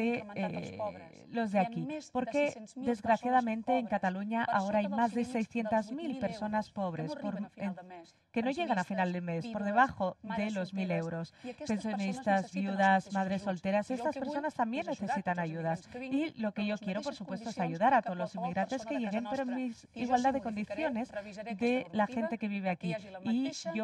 de aquí. Porque desgraciadamente en Cataluña ahora hay más de 600.000 personas pobres que no llegan a final de mes, por debajo de los 1.000 euros. Pensionistas, viudas, madres solteras, estas personas también necesitan ayudas. Y lo que yo quiero, por supuesto, es ayudar a todos los inmigrantes que lleguen, pero en igualdad de condiciones de la gente que vive aquí. Y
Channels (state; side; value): identical; both; correlation 1.00